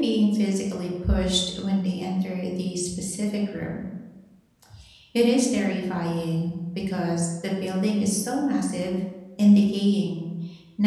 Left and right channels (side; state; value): both; identical; correlation 1.00